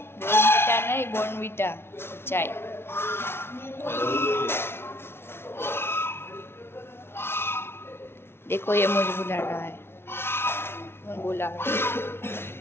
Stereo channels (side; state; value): right; late; 0.12 ms